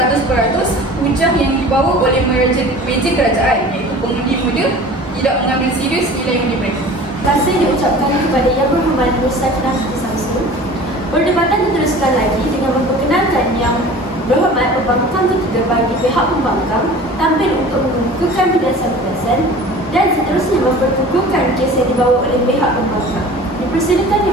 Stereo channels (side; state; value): both; normal; correlation 0.42